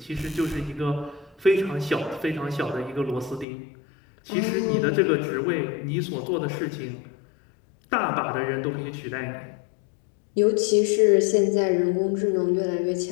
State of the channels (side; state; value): right; drops out; at 3.5 s